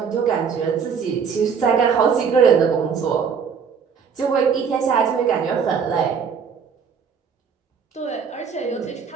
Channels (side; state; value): left; quieter; 6.5 dB